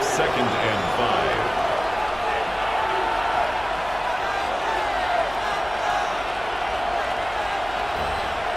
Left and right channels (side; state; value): left; noise; hum, 18 dB below the sound